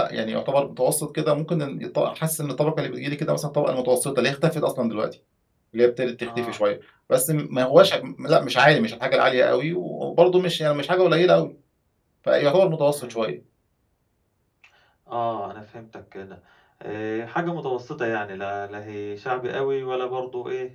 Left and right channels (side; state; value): both; identical; correlation 1.00